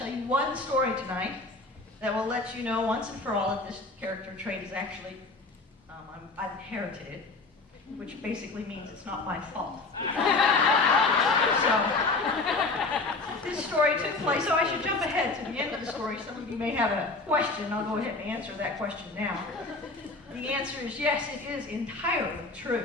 you one story tonight that will let you know once and for all that this character trait is actually, I've inherited it, which basically means it's not my fault. So, this story took place, so I should jump ahead to the end of the story. Some of you may have a question. I'll go ahead and answer that question now. The answer is yes, it is entirely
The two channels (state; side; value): quieter; right; 3.4 dB